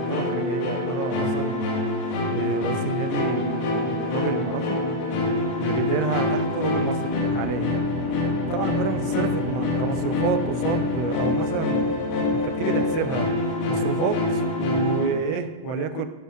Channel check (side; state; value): right; late; 31 ms